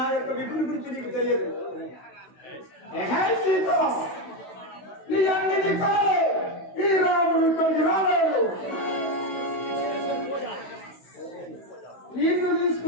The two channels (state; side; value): late; right; 16 ms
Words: యొక్క విపుని గురించి నీకు తెలియదు. హే సీత, నీ అన్నిటి కాలే ఈ రాముడు ఇక్కడికి రాలేడు. నిన్ను